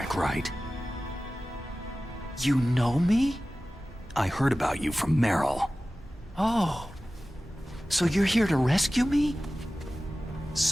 right? You know me? I heard about you from Meryl. Oh. So you're here to rescue me?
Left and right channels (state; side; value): normal; both; correlation 0.96